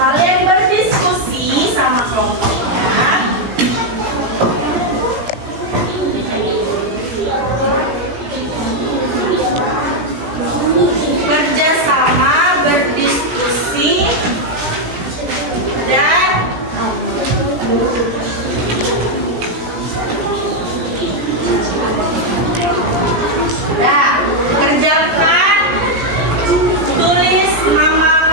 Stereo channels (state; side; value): late; left; 17 ms